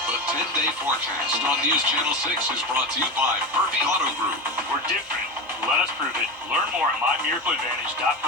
The 10-day forecast on News Channel 6 is brought to you by Murphy Auto Group. We're different. Let us prove it. Learn more at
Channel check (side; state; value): both; normal; correlation 0.22